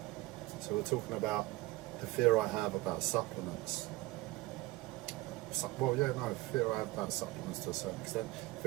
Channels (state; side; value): quieter; left; 20.2 dB